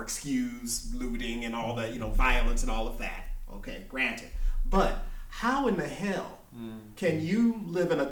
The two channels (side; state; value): both; identical; correlation 1.00